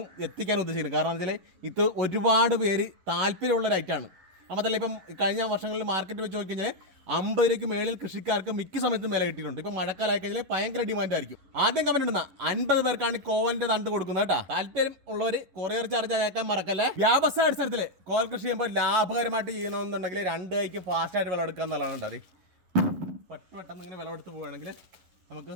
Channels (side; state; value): left; late; 11 ms